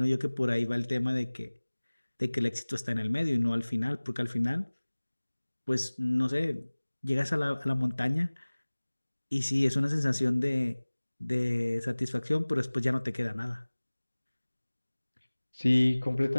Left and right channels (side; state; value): both; inverted; correlation -1.00